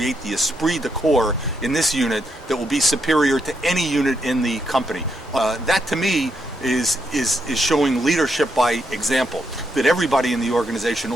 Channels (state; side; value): normal; both; correlation 0.80